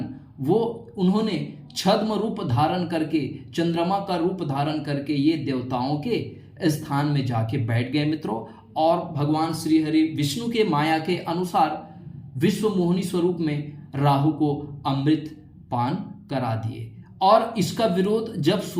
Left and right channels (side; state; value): both; identical; correlation 1.00